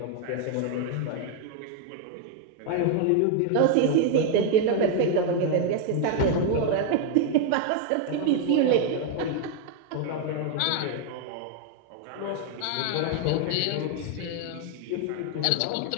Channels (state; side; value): different; both; correlation 0.01